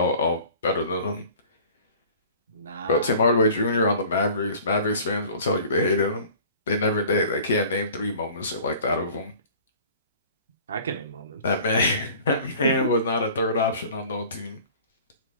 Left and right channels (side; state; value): both; inverted; correlation -0.47